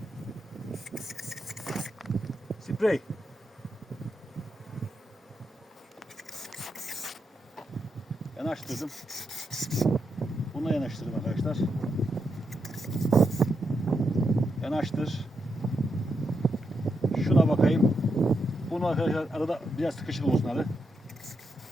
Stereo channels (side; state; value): both; normal; correlation 0.83